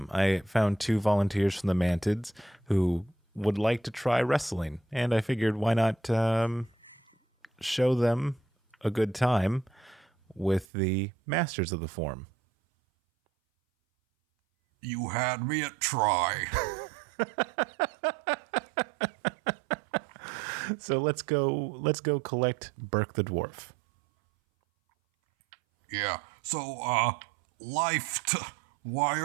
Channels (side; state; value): left; drops out; at 10.7 s